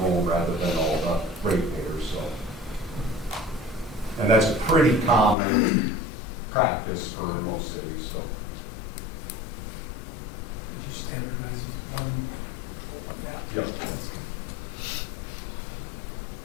home rather than all the ratepayers. So, and that's a pretty common practice for most cities. So. Yep.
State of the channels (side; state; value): right; drops out; at 5.4 s